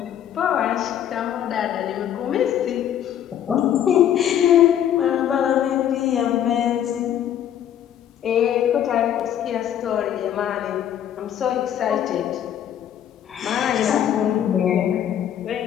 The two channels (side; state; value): right; quieter; 10.3 dB